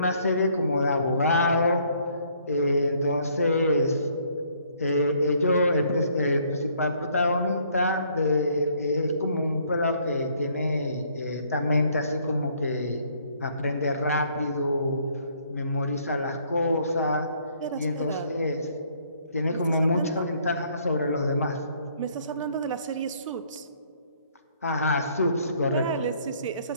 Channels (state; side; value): inverted; both; correlation -0.64